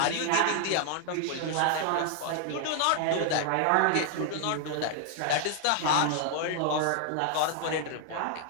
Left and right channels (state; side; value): different; both; correlation 0.00